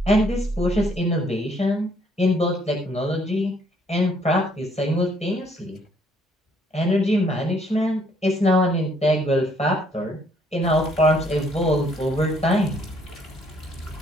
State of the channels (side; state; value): both; normal; correlation 0.66